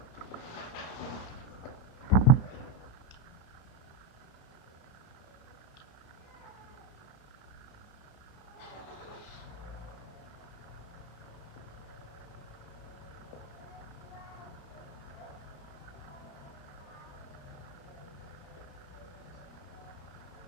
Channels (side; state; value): right; late; 32 ms